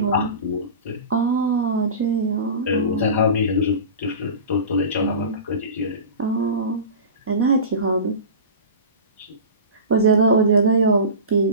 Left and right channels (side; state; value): both; inverted; correlation -0.31